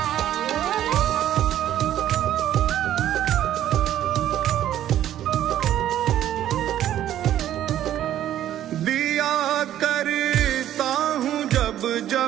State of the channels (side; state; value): left; quieter; 11.9 dB